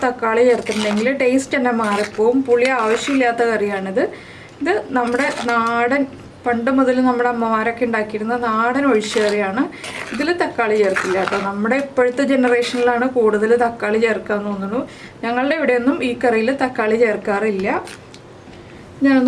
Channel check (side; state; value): both; identical; correlation 1.00